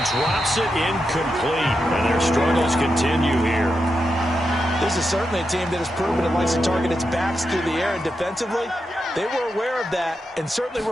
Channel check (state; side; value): normal; both; correlation 0.87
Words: drops it incomplete. And their struggles continue here. This is certainly a team that has proven it likes to target its backs through the air, and defensively, they were aware of that and certainly